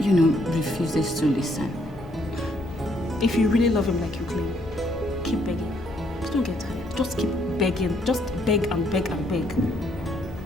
know, refuses to listen. If you really love him like you claim, keep begging. Just don't get tired. Just keep begging. Just beg and beg and beg.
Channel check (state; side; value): normal; both; correlation 0.69